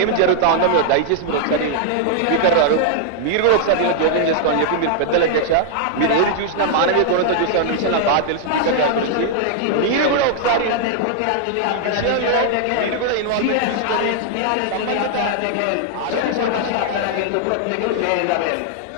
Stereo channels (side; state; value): both; different; correlation -0.01